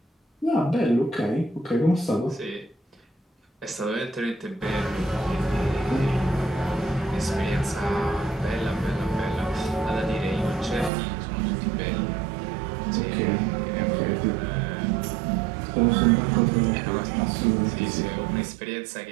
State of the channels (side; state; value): left; drops out; at 10.9 s